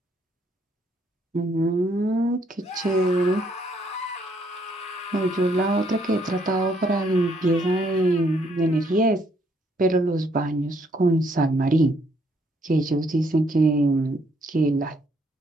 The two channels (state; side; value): normal; both; correlation 0.69